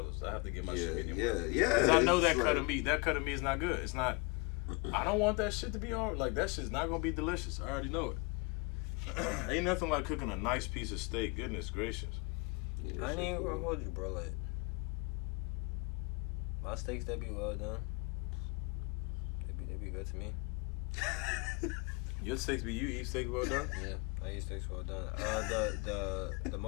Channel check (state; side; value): quieter; right; 29.2 dB